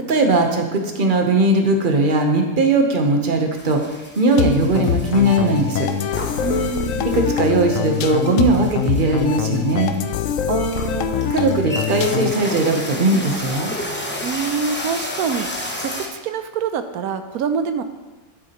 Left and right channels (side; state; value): both; normal; correlation -0.01